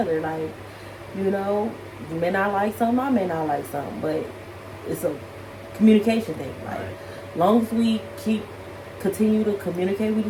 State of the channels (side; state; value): both; identical; correlation 1.00